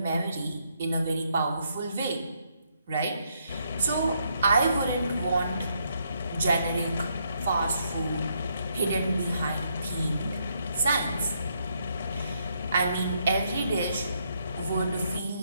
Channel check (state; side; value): inverted; both; correlation -0.75